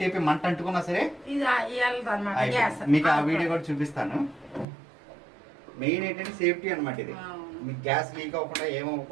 మంట అంటుకున్నా సరే మీకు ఆ వీడియో కూడా చూపిస్తాను. మెయిన్ ఏంటంటే సేఫ్టీ అనమాట. ఇది మీకు గ్యాస్ లీక్ అవ్వకుండా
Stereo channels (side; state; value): left; drops out; at 4.7 s